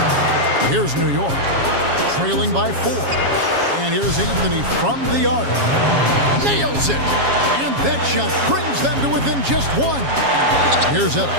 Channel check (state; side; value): late; left; 7.3 ms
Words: Here's New York, trailing by 4. And here's Anthony from the arc. Nails it! And that shot brings them to within just 1. Here's